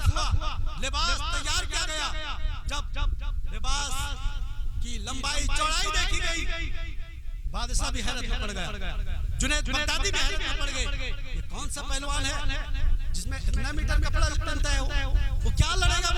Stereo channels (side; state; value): both; identical; correlation 1.00